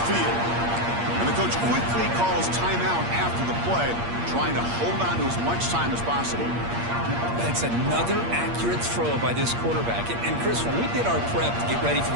field. And the coach quickly calls timeout after the play, trying to hold on to as much time as possible. That's another accurate throw by this quarterback. And Chris, when we did our prep to get ready for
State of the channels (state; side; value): late; left; 8.6 ms